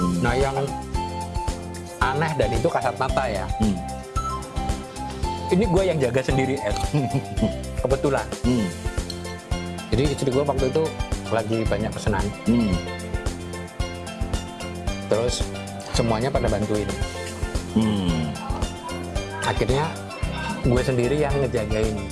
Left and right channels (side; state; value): both; identical; correlation 1.00